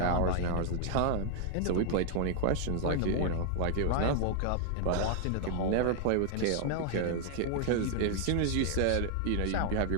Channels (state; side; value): different; both; correlation 0.00